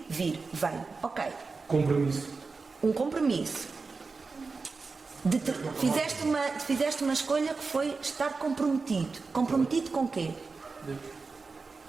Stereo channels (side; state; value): left; quieter; 4.3 dB